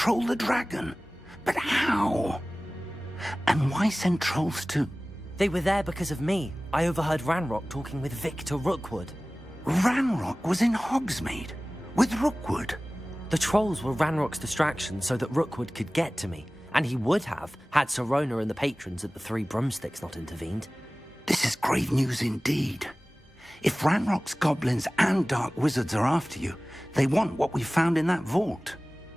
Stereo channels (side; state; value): both; normal; correlation 0.98